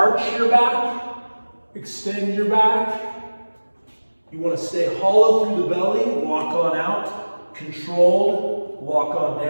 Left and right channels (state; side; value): inverted; both; correlation -1.00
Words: your back, extend your back. You want to stay hollow through the belly, walk on out, controlled, walk on